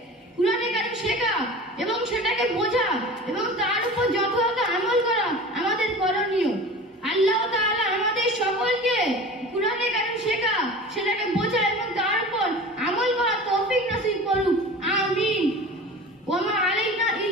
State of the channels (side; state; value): both; normal; correlation 0.37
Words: কুরআনে কারীম শেখা এবং সেটাকে বোঝা এবং তার উপর যথাযথ